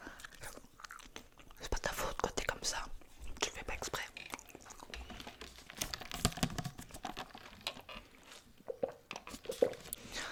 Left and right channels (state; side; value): identical; both; correlation 1.00